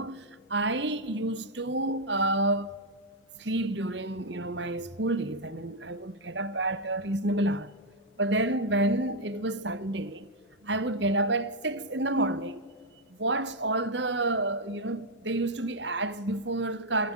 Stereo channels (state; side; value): normal; both; correlation 0.00